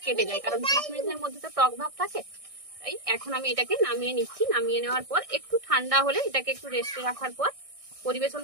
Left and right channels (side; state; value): left; late; 1.6 ms